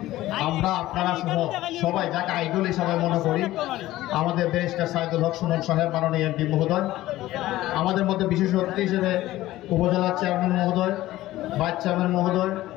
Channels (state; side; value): quieter; right; 15.9 dB